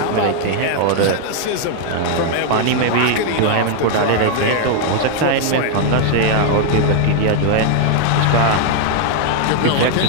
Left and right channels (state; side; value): different; both; correlation 0.00